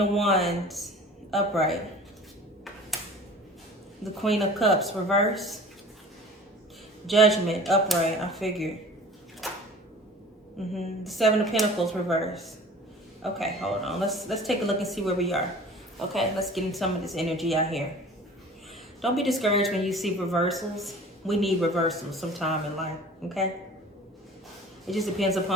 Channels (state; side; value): normal; both; correlation 0.43